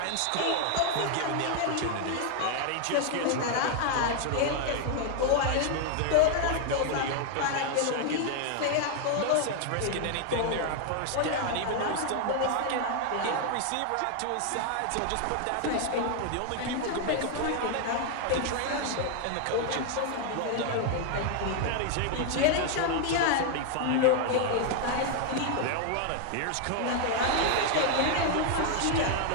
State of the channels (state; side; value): different; both; correlation 0.00